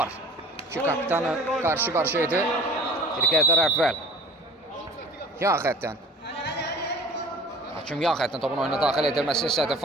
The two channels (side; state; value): both; normal; correlation 0.46